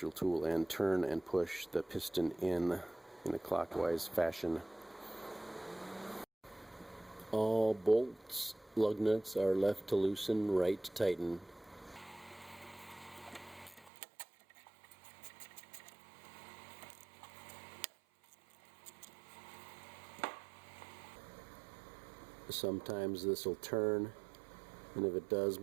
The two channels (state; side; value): drops out; left; at 13.9 s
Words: tool and turn and push the piston in a clockwise fashion. All bolts, lug nuts are left to loosen, right to tighten. Sometimes this will turn, and if it does,